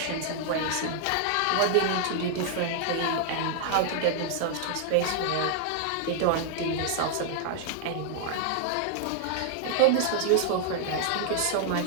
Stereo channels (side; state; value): both; different; correlation 0.00